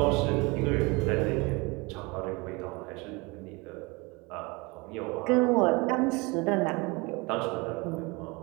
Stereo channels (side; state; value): left; quieter; 26.5 dB